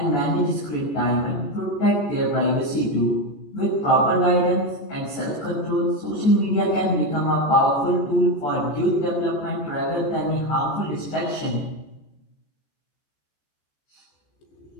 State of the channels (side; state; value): right; late; 14 ms